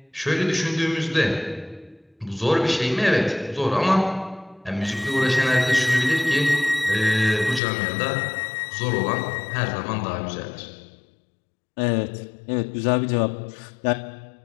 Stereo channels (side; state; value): right; drops out; at 7.6 s